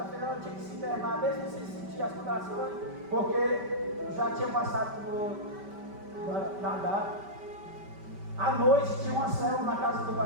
ela tinha que se internar, mesmo sem sentir as contrações, porque já tinha passado da data. À noite tinha uma célula na casa do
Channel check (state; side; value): late; left; 5.1 ms